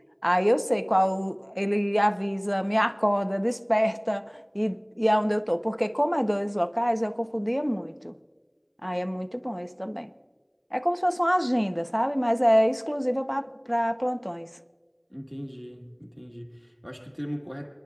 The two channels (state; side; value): identical; both; correlation 1.00